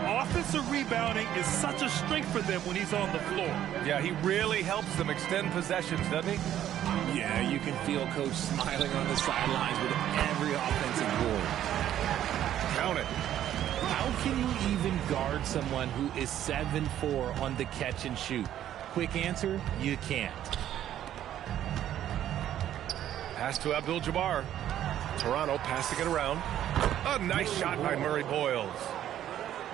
offensive rebounding is such a strength for them when he's on the floor. Yeah, he really helps them extend possessions, doesn't he? Yeah, you can feel coach smiling on the sidelines with every offensive board. Count it. How can you even guard someone who is 7'4" on the catch and shoot? Quick answer, you can't. Pass to Abdul-Jabbar. Toronto passing it around. A nice shot by Murray Boyles.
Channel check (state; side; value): quieter; left; 11.4 dB